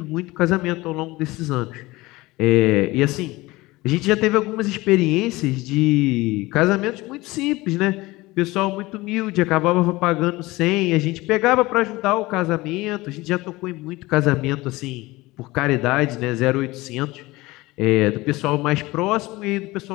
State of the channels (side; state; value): right; quieter; 20.5 dB